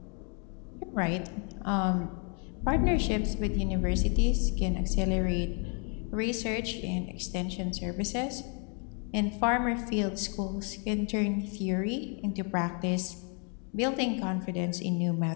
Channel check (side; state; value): right; quieter; 38.5 dB